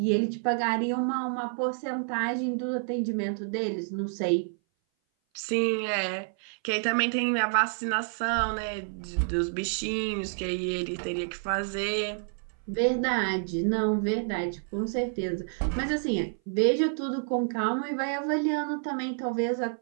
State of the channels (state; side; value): silent; left; 57 dB below the other